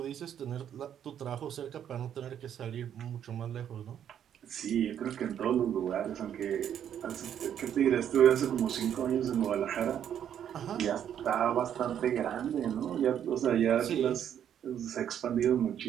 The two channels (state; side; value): quieter; left; 9.5 dB